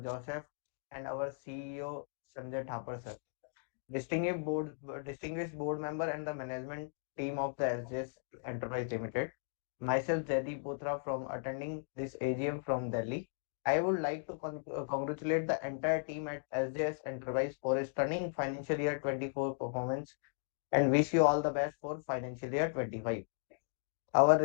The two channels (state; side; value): silent; right; digital silence